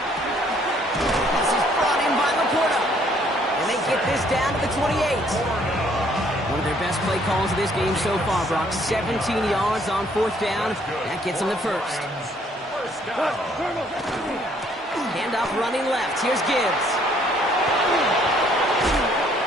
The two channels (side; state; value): both; normal; correlation 0.64